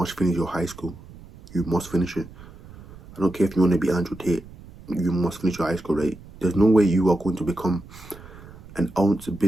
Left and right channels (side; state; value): right; noise; rumble, 19 dB below the sound